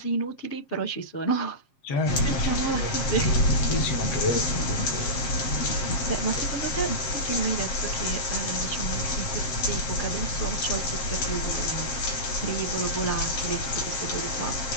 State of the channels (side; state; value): right; late; 7.4 ms